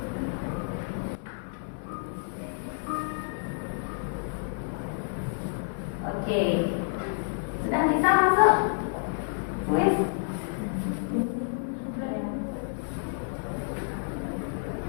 Oke. Sudah bisa masuk? Kuis?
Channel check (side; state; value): right; silent; digital silence